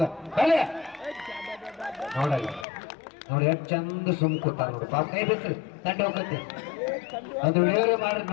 ಬರಲಿ. ನೋಡಲ್ಲ ನೋಡಿ ಎಷ್ಟು ಚಂದ ಸುಮ್ ಕೂತಾರ ನೋಡ್ರಿ ಪಾಪ. ಕೈ ಬಿಟ್ರಿ ತಂಡ ಹೋಗತ್ತೆ ಅದು ವಿಡಿಯೋರೇ ಮಾಡ್ರಿ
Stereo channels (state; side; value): drops out; right; at 2.7 s